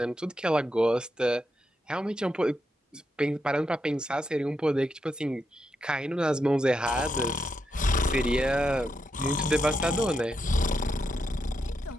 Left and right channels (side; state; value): both; normal; correlation 0.84